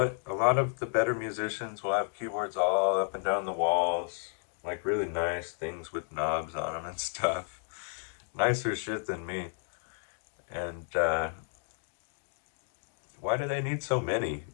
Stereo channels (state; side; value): silent; right; 56 dB below the other